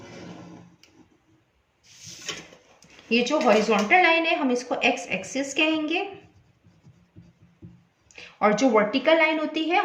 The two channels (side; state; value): both; identical; correlation 1.00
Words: ये जो हॉरिजॉन्टल लाइन है हम इसको x एक्सिस कहेंगे और जो वर्टिकल लाइन होती है